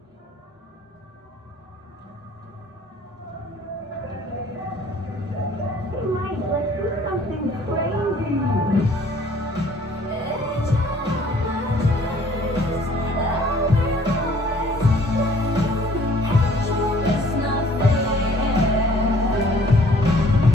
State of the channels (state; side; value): normal; both; correlation 0.56